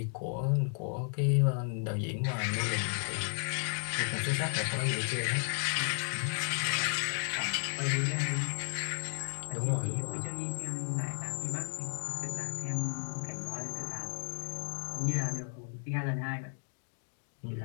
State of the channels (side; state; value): right; silent; 55 dB below the other